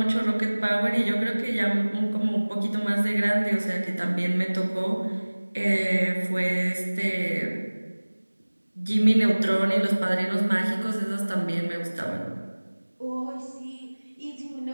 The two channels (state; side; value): inverted; both; correlation -1.00